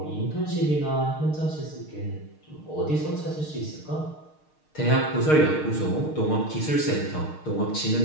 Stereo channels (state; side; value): late; right; 6.5 ms